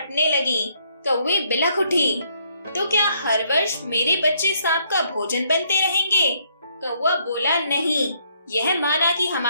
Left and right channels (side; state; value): both; inverted; correlation -0.70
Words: लगी। कौवी बिलख उठी, तो क्या हर वर्ष मेरे बच्चे सांप का भोजन बनते रहेंगे? कौवा बोला, नहीं, यह माना कि